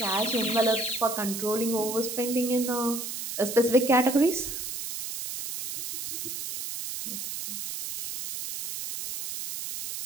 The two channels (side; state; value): right; noise; hiss, 6 dB below the sound